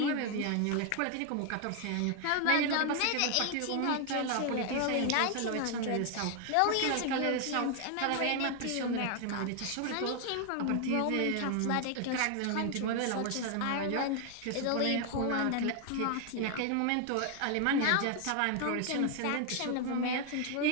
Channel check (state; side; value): different; both; correlation 0.00